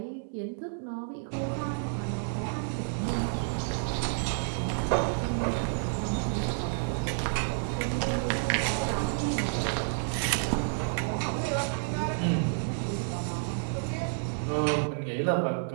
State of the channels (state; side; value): silent; left; digital silence